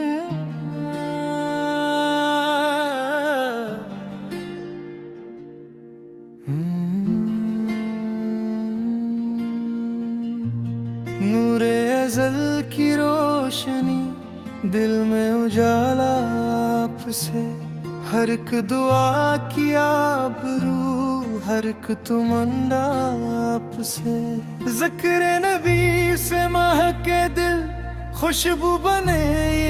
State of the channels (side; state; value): both; identical; correlation 1.00